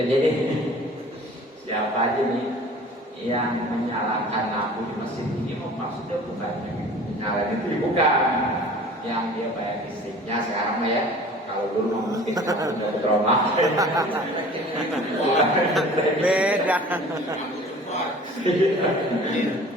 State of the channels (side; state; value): both; normal; correlation 0.45